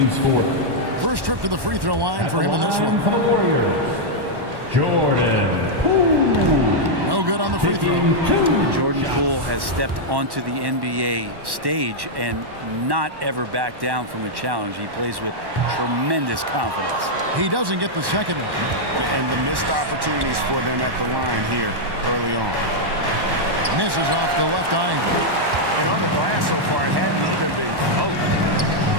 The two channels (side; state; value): left; late; 1.1 ms